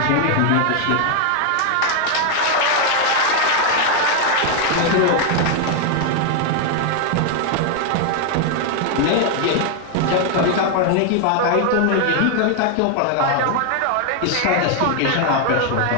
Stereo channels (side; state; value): both; different; correlation 0.00